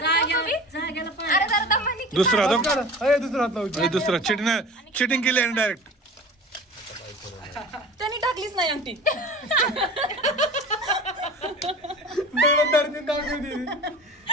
पाणी जरा दमानी दुसरा दो अरे दुसरा हात लावू. दुसरा चिटिंग केली आहे डायरेक्ट त्यांनी टाकलीच नाही अंगठी दगड धरती दाखवती.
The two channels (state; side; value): normal; both; correlation 0.38